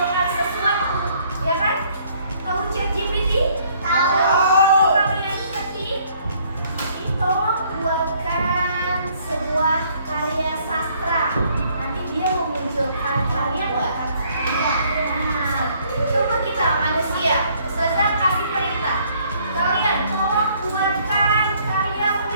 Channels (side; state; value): both; inverted; correlation -0.64